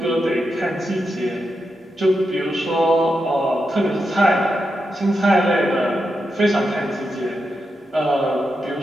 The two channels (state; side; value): normal; both; correlation 0.86